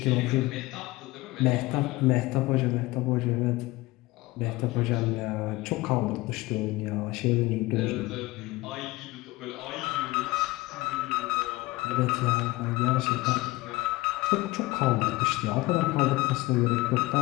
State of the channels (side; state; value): right; quieter; 20.2 dB